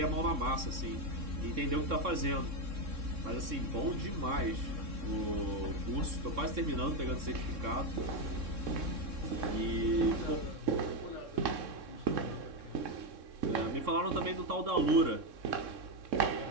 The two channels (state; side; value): late; left; 3.6 ms